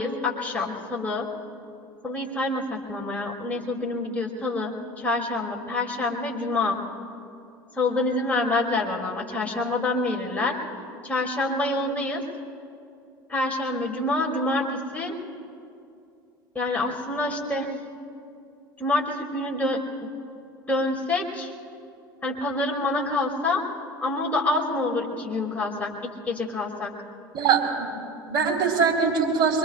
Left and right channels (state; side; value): normal; both; correlation 0.40